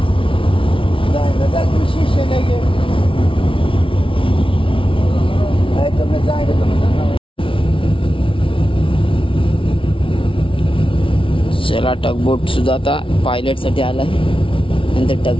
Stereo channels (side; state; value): right; late; 0.25 ms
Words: चला टगबोट सुद्धा आता पायलट साठी आलाय, नंतर